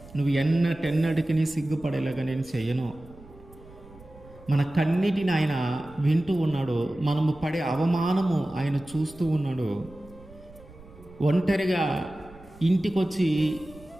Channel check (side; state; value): right; noise; rumble, 21 dB below the sound